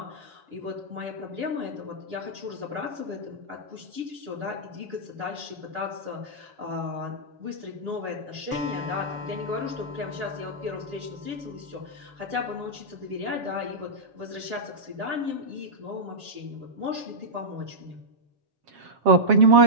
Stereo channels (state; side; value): late; left; 6.7 ms